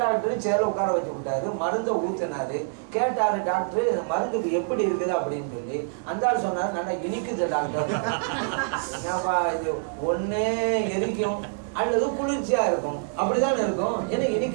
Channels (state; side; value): silent; left; digital silence